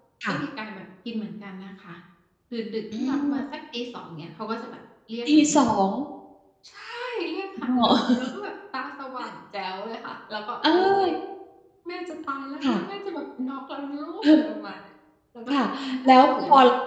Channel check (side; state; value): both; identical; correlation 1.00